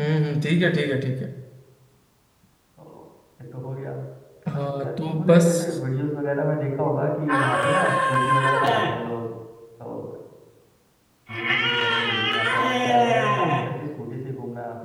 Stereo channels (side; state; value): both; identical; correlation 1.00